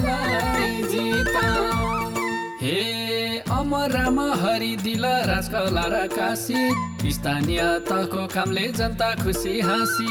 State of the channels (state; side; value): identical; both; correlation 1.00